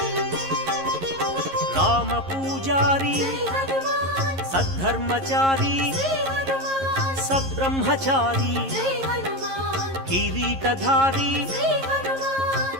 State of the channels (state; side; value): late; left; 11 ms